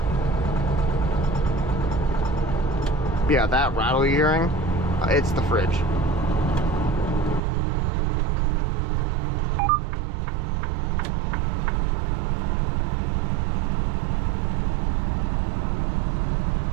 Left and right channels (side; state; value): left; drops out; at 7.4 s